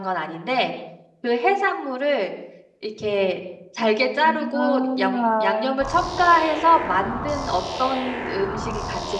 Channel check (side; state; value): both; identical; correlation 1.00